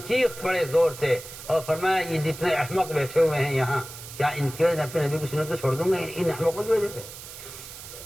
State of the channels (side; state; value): right; noise; hiss, 13 dB below the sound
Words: چیخ پڑے زور سے اور فرمایا یہ جتنے احمق بیٹھے ہوئے ہیں یہاں, کیا ان کی وجہ سے اپنے نبی کی سنت کو چھوڑ دوں گا ان احمقوں کی وجہ سے.